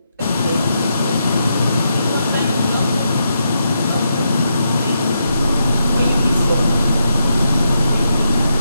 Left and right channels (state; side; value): inverted; both; correlation -0.81